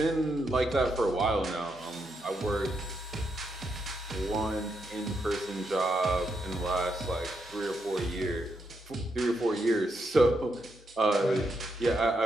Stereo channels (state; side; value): normal; both; correlation 0.81